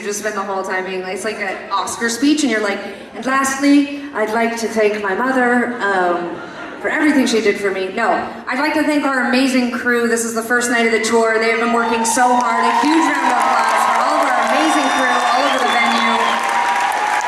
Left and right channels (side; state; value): both; identical; correlation 1.00